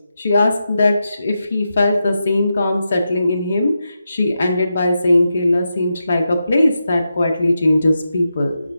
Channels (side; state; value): both; inverted; correlation -0.88